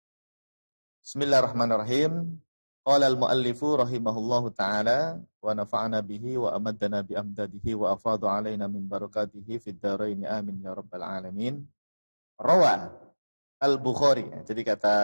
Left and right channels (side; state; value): both; inverted; correlation -1.00